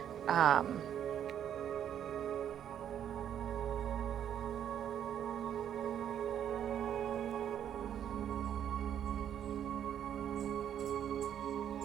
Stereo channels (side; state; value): left; quieter; 9.7 dB